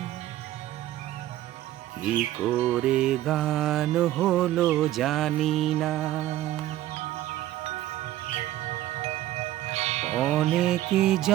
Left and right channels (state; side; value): quieter; left; 14.2 dB